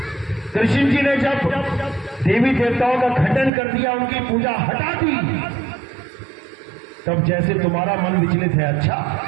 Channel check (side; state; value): left; drops out; at 3.5 s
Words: कृष्ण जी ने जब देवी देवताओं का खंडन कर दिया, उनकी पूजा हटा दी, तब जैसे तुम्हारा मन विचलित है, अच्छा